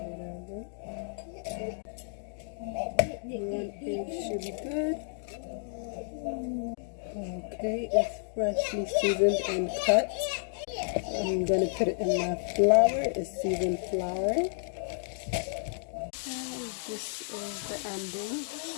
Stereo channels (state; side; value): silent; right; digital silence